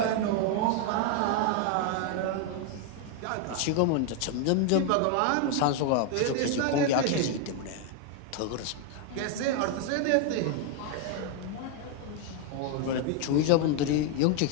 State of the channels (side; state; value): both; different; correlation 0.01